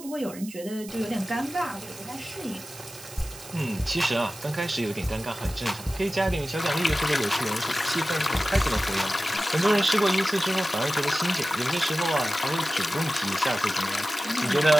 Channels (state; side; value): noise; right; hiss, 16 dB below the sound